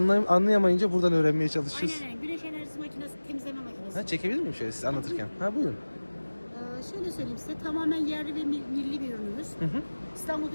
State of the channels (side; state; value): both; inverted; correlation -1.00